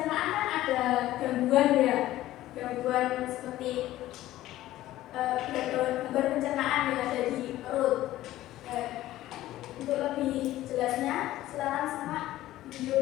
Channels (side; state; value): right; quieter; 14.9 dB